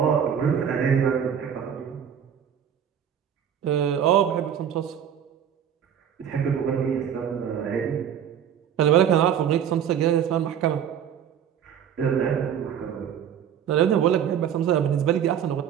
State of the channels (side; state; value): left; quieter; 8.8 dB